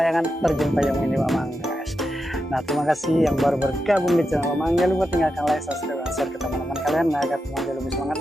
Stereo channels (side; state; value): both; normal; correlation 0.87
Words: terjun payung mini Pakmang guys. Nah terima kasih yang baru bergabung di channel Pakmang, jangan lupa tinggalkan like, subscribe, dan share ke teman-teman kalian nah, agar teman-teman lebih semangat